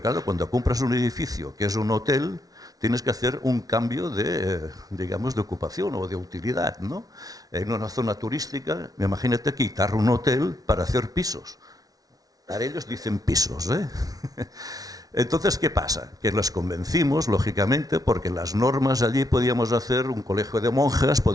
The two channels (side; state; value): left; late; 0.18 ms